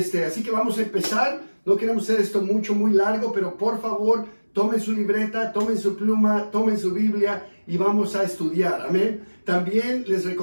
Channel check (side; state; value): both; inverted; correlation -1.00